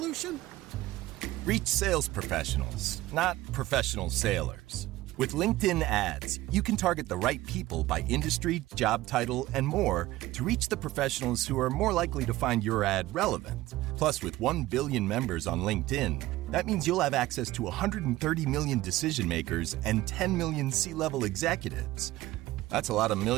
Reach sales professionals, not professional sailors. With LinkedIn ads, you can target the right people by industry, job title, and more to reach the professionals who are more likely to find your ad relevant. Plus, with 1 billion members on LinkedIn, that means you'll have access to 130 million decision makers and 10 million C-level executives. That's a lot of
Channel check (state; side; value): quieter; left; 17.1 dB